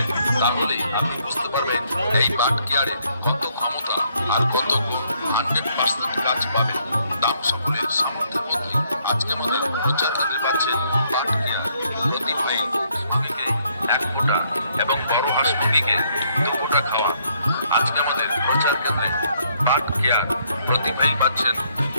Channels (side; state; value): both; inverted; correlation -0.70